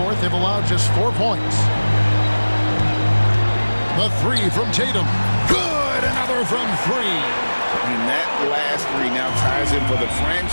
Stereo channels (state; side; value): inverted; both; correlation -1.00